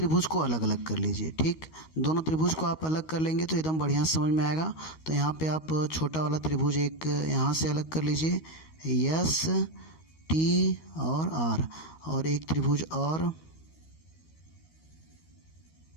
को अलग अलग कर लीजिए, ठीक। दोनों त्रिभुज को आप अलग कर लेंगे तो एकदम बढ़िया समझ में आएगा। तो यहाँ पे आप छोटा वाला त्रिभुज एक यहाँ से अलग कर लीजिए, एस टी और आर, और एक त्रिभुज और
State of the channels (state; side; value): late; right; 13 ms